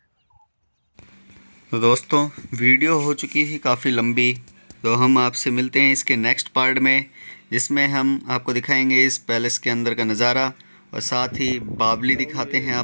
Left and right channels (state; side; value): inverted; both; correlation -1.00